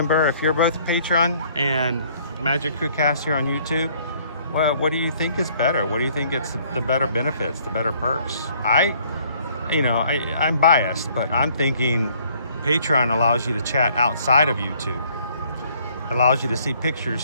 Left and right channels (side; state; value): both; inverted; correlation -0.62